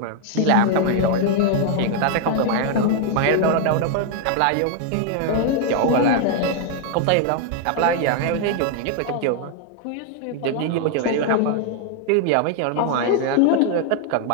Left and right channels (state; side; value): different; both; correlation 0.00